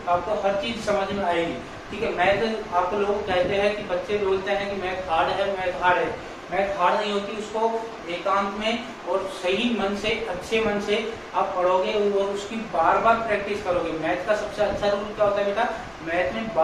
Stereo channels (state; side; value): identical; both; correlation 1.00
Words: आपको हर चीज समझ में आएगी। ठीक है, मैथ आप लोग कहते हैं कि बच्चे बोलते हैं कि मैथ हार्ड है, मैथ हार्ड है। मैथ हार्ड नहीं होती, उसको एकांत में और सही मन से, अच्छे मन से आप पढ़ोगे और उसकी बार बार प्रैक्टिस करोगे। मैथ का सबसे अच्छा रूल क्या होता है बेटा, मैथ में